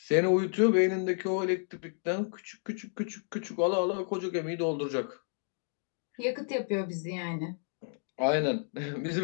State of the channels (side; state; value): right; silent; digital silence